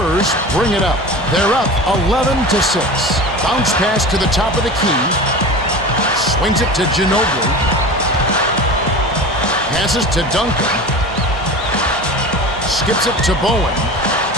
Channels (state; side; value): normal; both; correlation 0.33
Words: bring it up. They're up 11-6. Bounce pass to the top of the key. Swings it to Ginobili. Passes to Duncan. Skips it to Bowen.